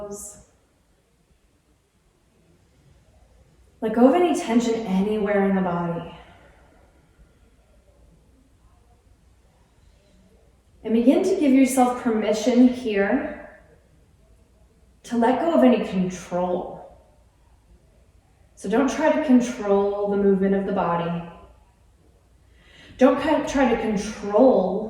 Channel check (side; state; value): both; identical; correlation 1.00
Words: Let go of any tension anywhere in the body. And begin to give yourself permission here to let go of any control. So don't try to control the movement of the body. Don't try to